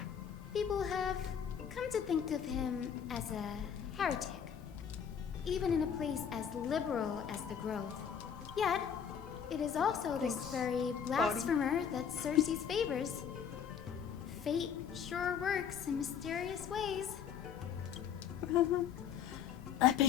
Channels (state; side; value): quieter; right; 7.9 dB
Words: People have come to think of him as a heretic, even in a place as liberal as the Grove. Yet, it is also this very blasphemer that Cersei's favors. Fate sure works in mysterious ways. I